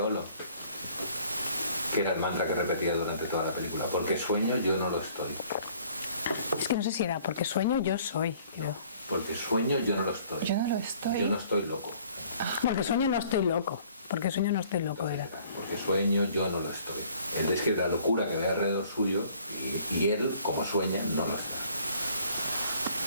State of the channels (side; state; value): both; inverted; correlation -0.57